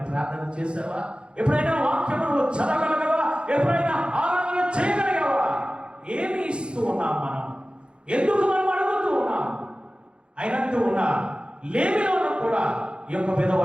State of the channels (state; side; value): late; left; 0.055 ms